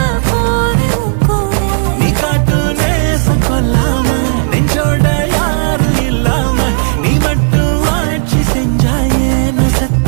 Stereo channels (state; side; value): silent; left; 66 dB below the other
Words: கொல்லாம நெஞ்சோட யாரும் இல்லாம நீ மட்டும் ஆட்சி செஞ்சாயே